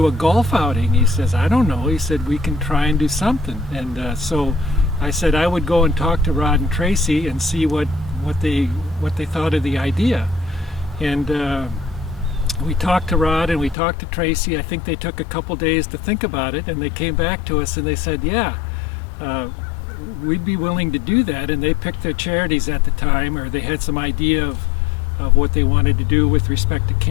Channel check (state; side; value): drops out; right; at 13.8 s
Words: a golf outing? He says, I don't know. He said, we can try and do something. And so I said I would go and talk to Rod and Tracy and see what they thought of the idea. And we talked to Rod and we talked to Tracy. I think they took a couple days to think about it, and they came back to us and they said, yeah, we'd be willing to do that. And they picked their charities at the time, or they had some idea of what they wanted to do with respect to